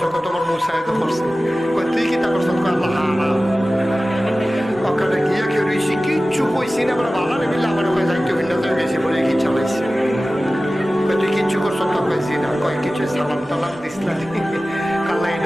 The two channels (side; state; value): both; normal; correlation 0.96